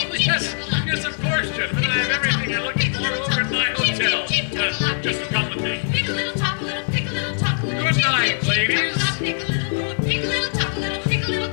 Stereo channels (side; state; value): right; silent; digital silence